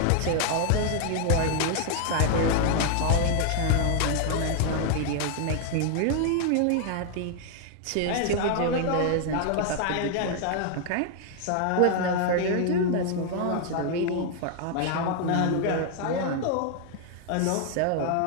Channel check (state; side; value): different; both; correlation 0.00